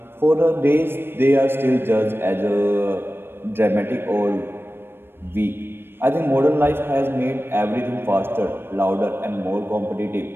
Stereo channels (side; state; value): left; late; 0.10 ms